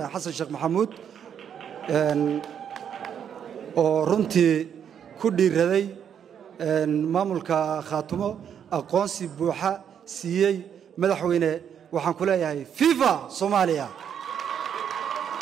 Xasan Sheekh Maxamuud oo runtii ku dhiiraday maamulka Khartoum aqoonsi buuxa siiyay madaxweyne waxaan ku leeyahay viva Soomaaliya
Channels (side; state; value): left; quieter; 8.4 dB